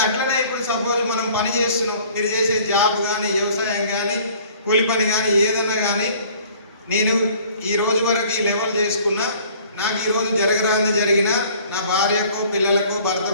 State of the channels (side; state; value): both; inverted; correlation -0.53